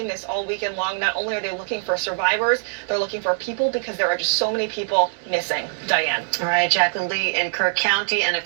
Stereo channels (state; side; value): silent; left; 61 dB below the other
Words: this all weekend long. Not only are they looking for survivors, they're looking for people, because there are just so many people missing. Diane. All right, Jacqueline Lee in Kirk County, and